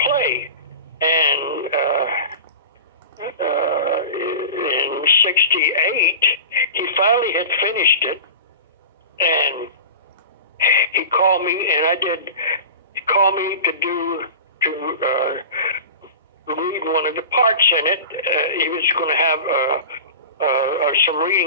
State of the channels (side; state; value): both; inverted; correlation -0.33